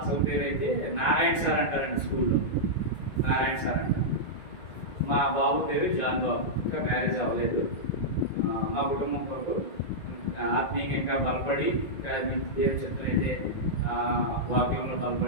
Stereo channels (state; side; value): late; right; 1.9 ms